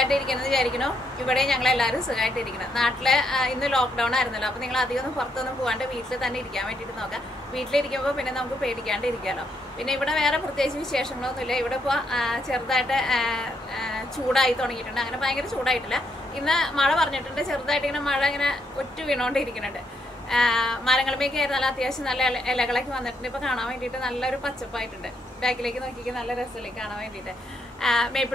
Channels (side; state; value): both; normal; correlation 0.76